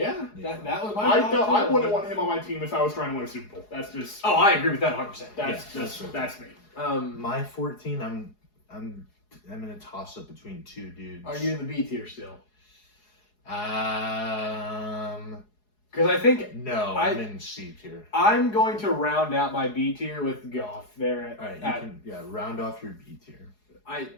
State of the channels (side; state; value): right; late; 4.8 ms